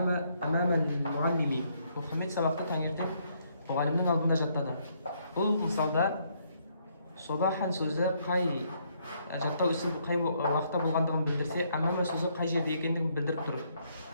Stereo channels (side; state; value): both; inverted; correlation -0.71